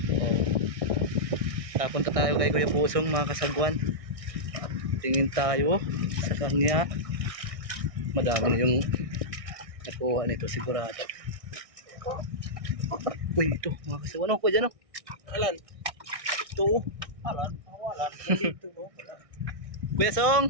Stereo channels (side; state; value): left; late; 1.6 ms